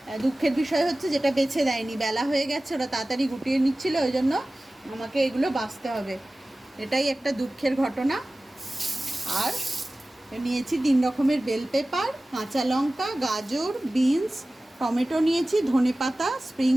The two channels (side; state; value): both; normal; correlation 0.97